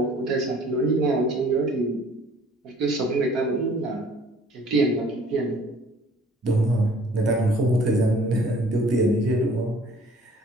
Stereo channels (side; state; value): both; normal; correlation 0.54